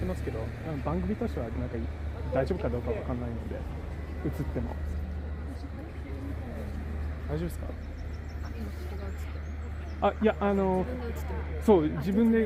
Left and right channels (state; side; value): identical; both; correlation 1.00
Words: ますけど、番組としてはなんか大丈夫かどうかわかんないので、映っても大丈夫ですか？あ、いやそう自分で